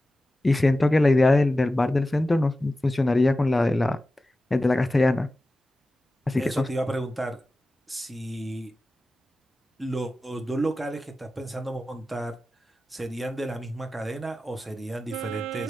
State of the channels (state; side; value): normal; both; correlation 0.95